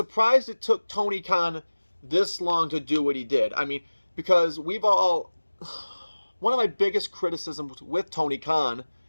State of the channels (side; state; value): both; inverted; correlation -1.00